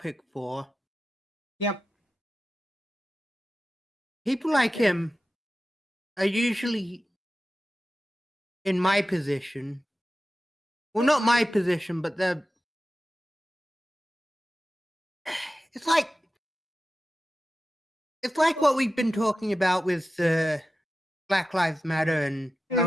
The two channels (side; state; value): both; normal; correlation 0.93